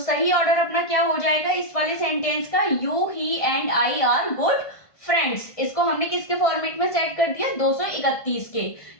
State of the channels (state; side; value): late; right; 1.5 ms